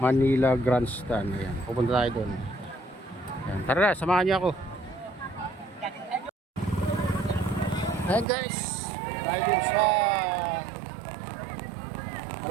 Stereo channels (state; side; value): drops out; left; at 8.2 s